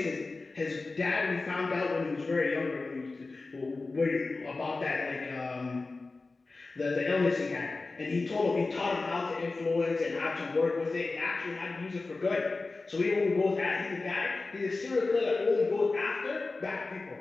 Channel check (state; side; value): quieter; right; 3.6 dB